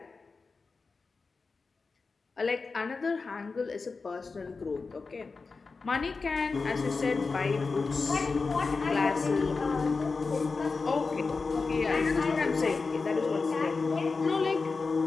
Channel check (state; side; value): quieter; right; 4.3 dB